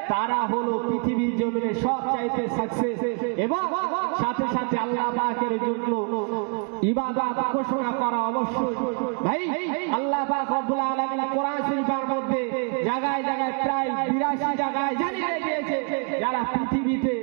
তারা হলো পৃথিবীর জমিনে সবচাইতে সাকসেস এবং সাথে সাথে আল্লাহ পাকের জন্য ইবাদত ঘোষণা করা অবশ্যই। ভাই, আল্লাহ পাক রব্বুল আলামিন কোরআন শরীফের মধ্যে জায়গায় জায়গায় প্রায় 82 জায়গায় জানিয়ে দিয়েছে, যারা পৃথিবীতে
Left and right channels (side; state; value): left; quieter; 38.0 dB